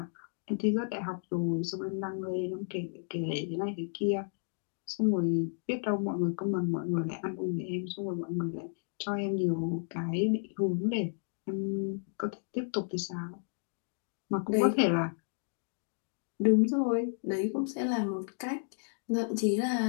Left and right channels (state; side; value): silent; right; digital silence